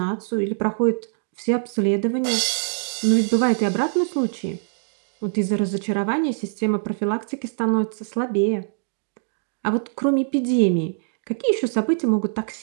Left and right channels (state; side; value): silent; left; digital silence